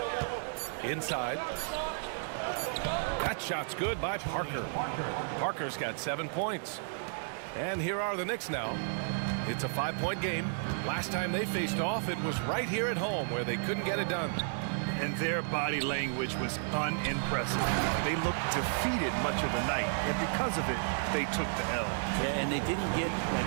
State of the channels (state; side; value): silent; left; 56 dB below the other